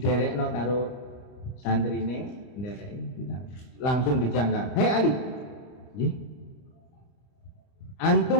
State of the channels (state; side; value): late; right; 30 ms